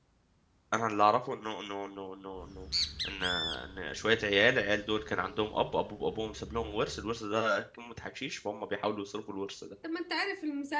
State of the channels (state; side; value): identical; both; correlation 1.00